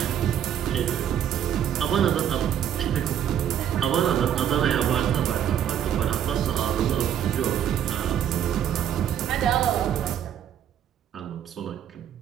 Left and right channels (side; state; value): left; quieter; 9.8 dB